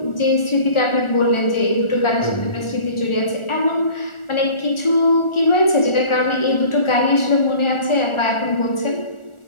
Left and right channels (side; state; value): right; late; 1.4 ms